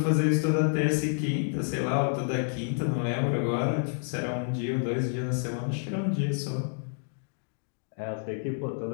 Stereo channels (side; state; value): right; silent; 59 dB below the other